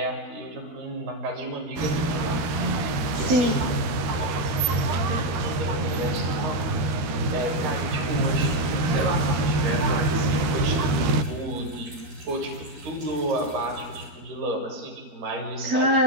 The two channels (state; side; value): late; left; 13 ms